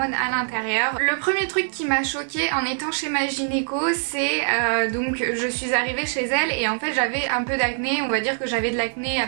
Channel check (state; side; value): silent; left; digital silence